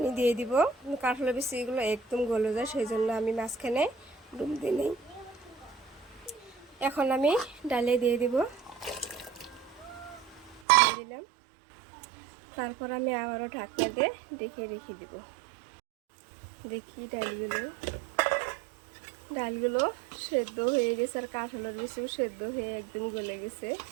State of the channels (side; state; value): left; drops out; at 10.6 s